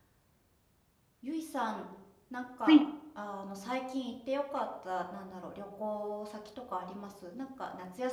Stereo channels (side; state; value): both; identical; correlation 1.00